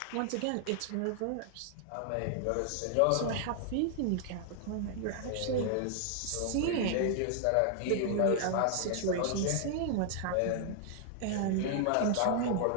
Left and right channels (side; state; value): both; different; correlation 0.00